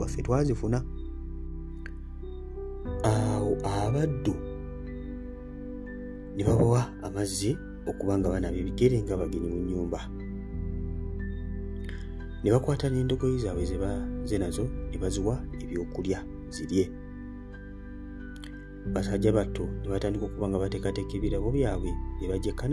ffe twazifuna. Awo abaddu ne babawa amazzi okubanga banaaba ebigere nga bagenyi mu nnyumba. Ne bakwata n'endogoyi zaabwe ze nazo ne baziwa ebyokulya zirye. Basajja batto ne batandika okuba nga bateekateeka ebirabo byabwe ne bajja e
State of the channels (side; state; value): both; identical; correlation 1.00